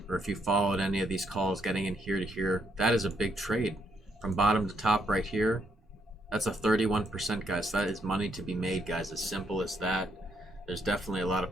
Or if you followed any of these calls getting in here to here, that is a big trade. From bottom to top right here, that's a 31%, guys. That is money to be made, guys. As simple as that. There's definitely a lot of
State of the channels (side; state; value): both; normal; correlation 0.75